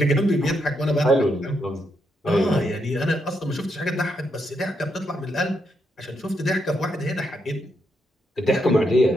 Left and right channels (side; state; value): both; normal; correlation 0.79